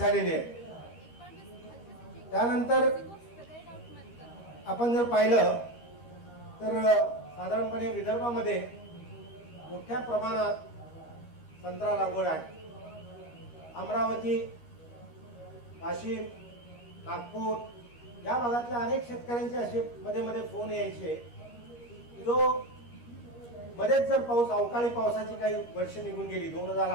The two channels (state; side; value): late; right; 13 ms